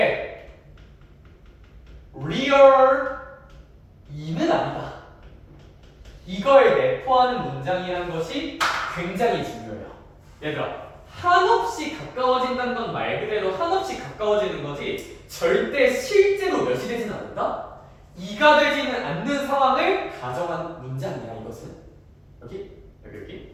real 2는 아니다. 이걸 내포하는 문장이라는 것이 굉장히 중요해요. 얘들아, 한없이 가까워진다는 건 말 그대로 한없이 가까워지는 거지 절대 실제로 몇이 되진 않는다? 2가 되지는 않는 상황을 가정한 문장이야, 이것은. 여기.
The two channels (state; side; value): identical; both; correlation 1.00